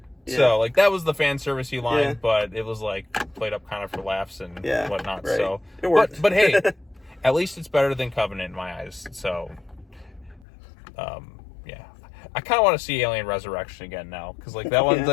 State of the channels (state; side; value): drops out; right; at 10.5 s